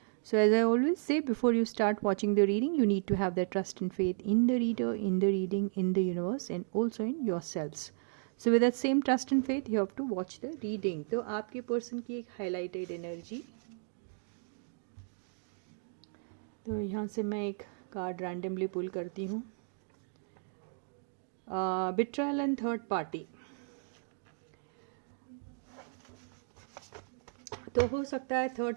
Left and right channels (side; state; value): left; silent; 55 dB below the other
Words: So as I always say, before you start watching the reading, you need to have the trust and faith in the reader, in the reading, in the universe, and also in yourselves. So with that same trust and faith, you have to watch the reading. तो आपके person की एक highlighted energy, तो यहाँ से मैं एक card randomly पुल करती हूँ. बिट्रायल एंड थर्ड पार्टी. तो हो सकता है